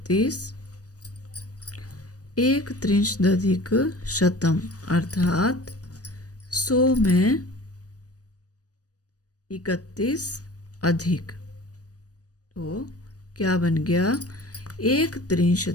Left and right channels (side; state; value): right; late; 0.67 ms